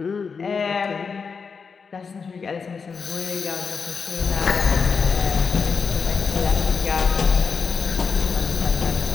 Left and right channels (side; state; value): right; quieter; 5.5 dB